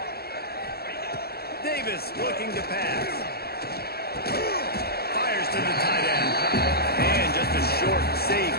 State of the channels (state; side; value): late; right; 0.46 ms